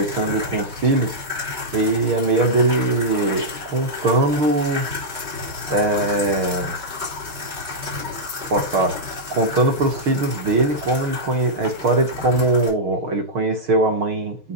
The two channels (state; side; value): late; left; 5.3 ms